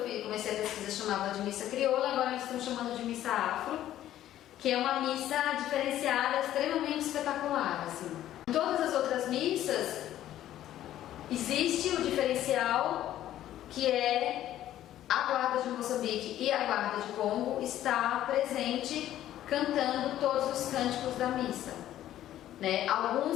comecei a pesquisa chamava de missa crioula, agora eles estão chamando de missa afro, que é uma missa diferenciada, extremamente espetacular, assim. Em todas as outras missas existe o diferencial que é a Guarda de Moçambique e a Guarda de Congo está presente cantando todos os cânticos da missa, né? Alguns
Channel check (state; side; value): quieter; right; 12.7 dB